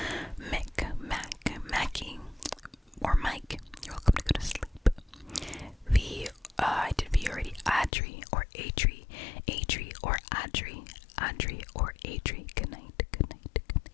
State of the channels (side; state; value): right; drops out; at 7.9 s